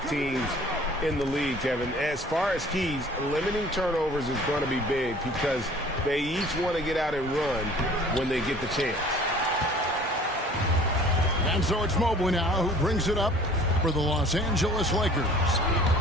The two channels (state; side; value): normal; both; correlation 0.49